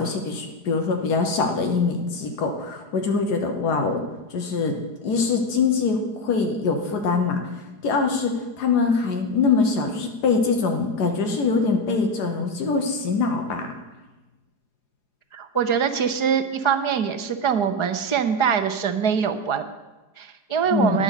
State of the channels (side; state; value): right; late; 4.8 ms